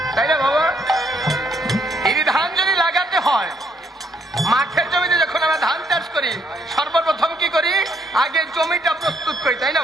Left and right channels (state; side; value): normal; both; correlation 0.71